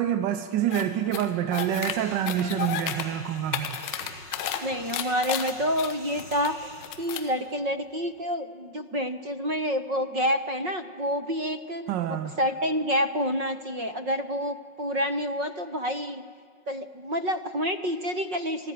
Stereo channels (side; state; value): left; late; 5.5 ms